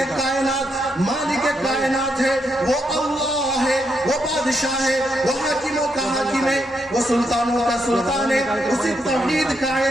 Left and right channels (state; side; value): normal; both; correlation 0.79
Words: کائنات، مالک کائنات ہے، وہ اللہ ہے، وہ بادشاہ ہے، وہ حاکموں کا حاکم ہے، وہ سلطانوں کا سلطان ہے۔ اسی توحید کا